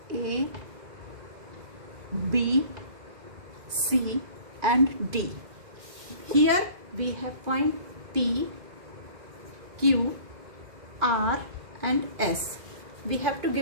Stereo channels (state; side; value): late; left; 2.4 ms